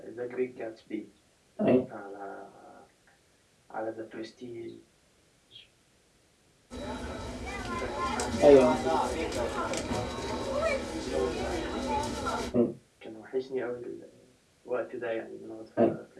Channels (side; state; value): both; identical; correlation 1.00